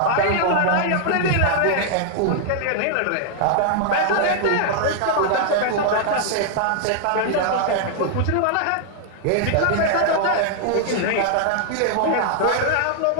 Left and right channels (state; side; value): different; both; correlation 0.00